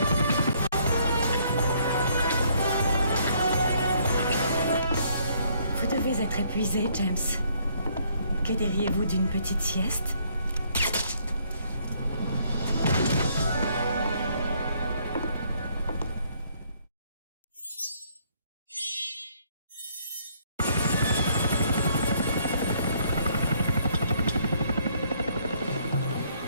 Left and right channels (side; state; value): both; inverted; correlation -0.66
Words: Vous devez être épuisé, James. Que diriez-vous d'une petite sieste?